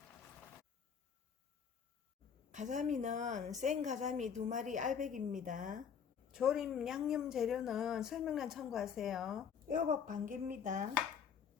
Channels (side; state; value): right; quieter; 7.2 dB